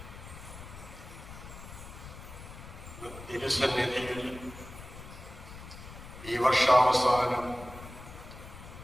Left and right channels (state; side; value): noise; left; rumble, 14 dB below the sound